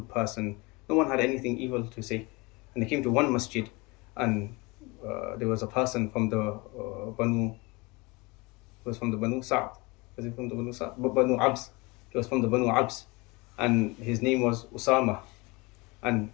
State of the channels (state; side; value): quieter; right; 25.7 dB